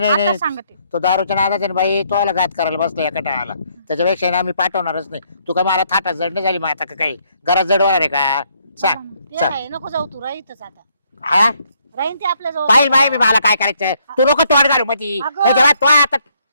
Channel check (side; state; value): both; inverted; correlation -0.70